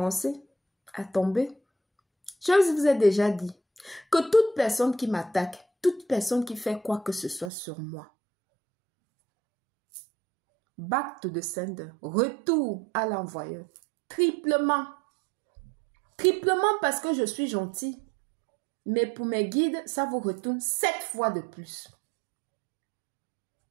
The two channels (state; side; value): drops out; left; at 7.5 s